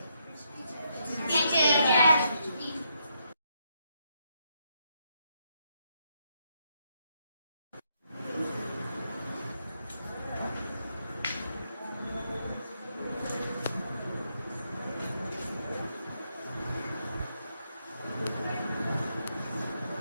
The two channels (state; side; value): inverted; both; correlation -0.78